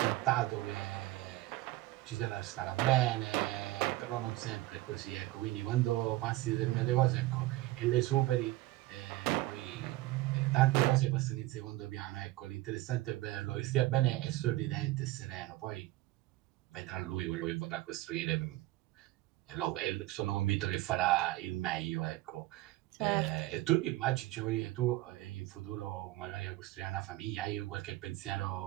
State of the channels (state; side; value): quieter; left; 17.6 dB